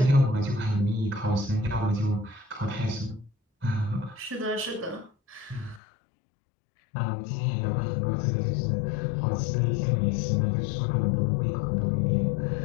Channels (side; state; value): right; drops out; at 5.8 s